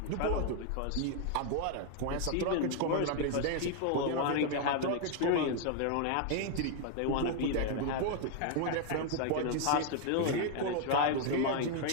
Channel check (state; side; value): different; both; correlation 0.00